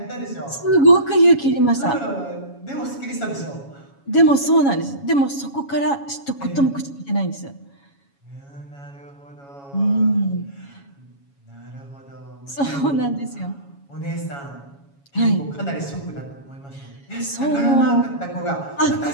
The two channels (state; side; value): late; right; 7.2 ms